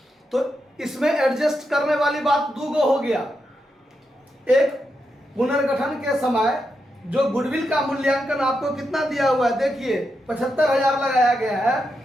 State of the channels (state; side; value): normal; both; correlation 0.85